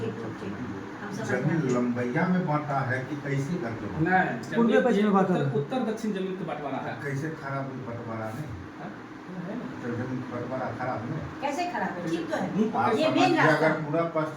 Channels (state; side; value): identical; both; correlation 1.00